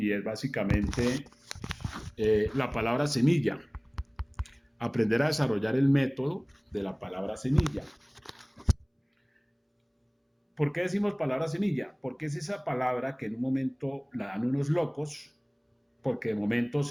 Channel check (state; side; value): identical; both; correlation 1.00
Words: es básicamente la palabra semilla. Aprender a desarrollar el método de la palabra semilla. ¿Por qué decimos palabra semilla? Porque es esa palabra que en un momento la dan unos locos, porque de momento